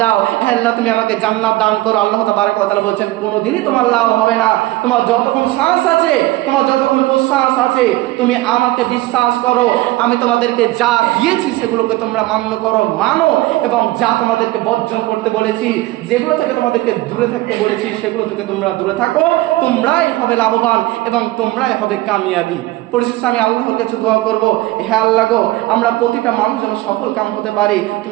দাও, হে আল্লাহ তুমি আমাকে জান্নাত দান করো। আল্লাহ তাবারক ওয়া তাআলা বলছেন, কোনোদিনই তোমার লাভ হবে না। তোমার যতক্ষণ শ্বাস আছে, তোমার যতক্ষণ প্রশ্বাস আছে, তুমি আমাকে বিশ্বাস করো, আমি তোমাদেরকে যা দিয়েছি সেগুলোকে তোমরা মানো, এবং যা তোমাদেরকে বর্জন করতে বলেছি, যেগুলো থেকে তোমাদেরকে দূরে থাকতে বলেছি, সেগুলো থেকে তোমরা দূরে থাকো, তোমরাই হবে লাভবান এবং তোমরাই হবে কামিয়াবি। পরিশেষে আমি আল্লাহর কাছে দোয়া করব, হে আল্লাহ গো, আমরা প্রতিটা মানুষ যেন সফল কাম হতে পারি,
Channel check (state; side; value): quieter; left; 18.4 dB